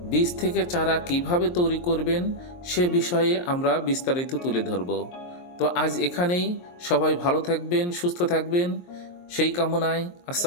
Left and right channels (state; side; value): late; right; 23 ms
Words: বীজ থেকে চারা কিভাবে তৈরি করবেন সে বিষয়ে আমরা বিস্তারিত তুলে ধরব। তো আজ এখানেই, সবাই ভালো থাকবেন, সুস্থ থাকবেন সেই কামনায়।